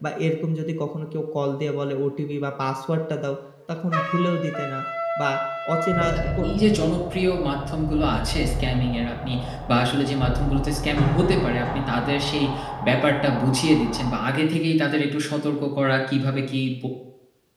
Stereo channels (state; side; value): identical; both; correlation 1.00